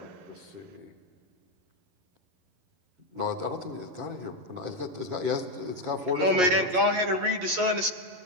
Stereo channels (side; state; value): left; late; 11 ms